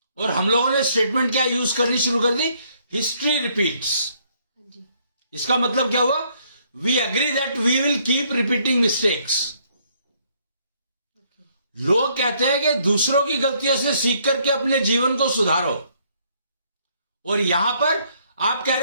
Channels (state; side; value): inverted; both; correlation -0.68